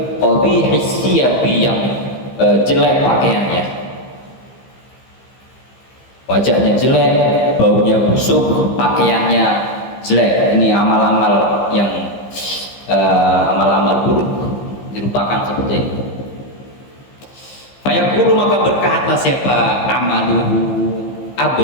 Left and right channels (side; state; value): right; late; 15 ms